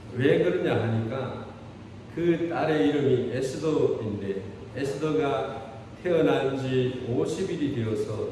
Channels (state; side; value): identical; both; correlation 1.00